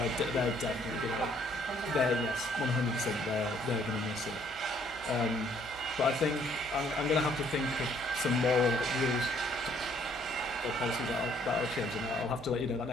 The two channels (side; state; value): both; normal; correlation 0.64